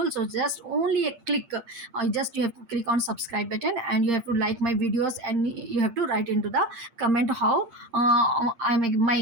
so just only a click, just you have to click on subscribe button, and you have to like my videos, and you have to write into the comment how I make my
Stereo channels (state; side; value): late; left; 8.7 ms